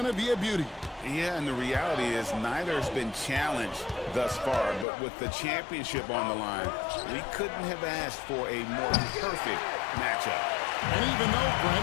to be a beauty. Yeah, and the reality is neither has been challenged thus far, but with the championship on the line, we couldn't have asked for a more perfect matchup. And even though,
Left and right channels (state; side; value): drops out; right; at 4.9 s